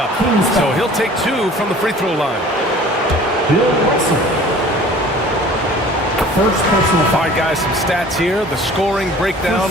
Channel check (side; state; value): both; normal; correlation 0.47